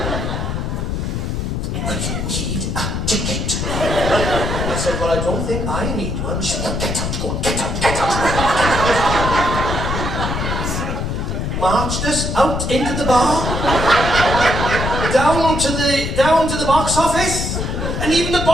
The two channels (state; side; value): noise; left; rumble, 2 dB below the sound